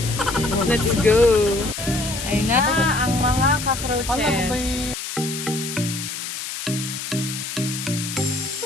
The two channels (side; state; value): left; noise; hiss, 6 dB below the sound